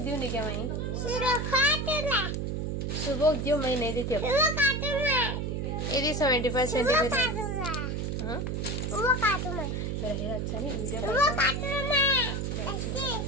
दियो नहीं क्या मैं सुबह दियो मैं नहीं देती अब. ఇది 75 centimeter. हाँ मेरा हीरा अच्छा नहीं वीडियो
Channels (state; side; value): noise; right; hum, 2 dB below the sound